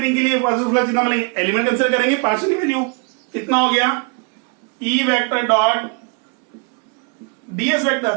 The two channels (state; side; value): quieter; left; 34.9 dB